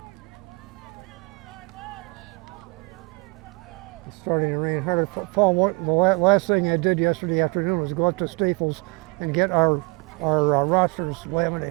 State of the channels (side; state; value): left; quieter; 28.6 dB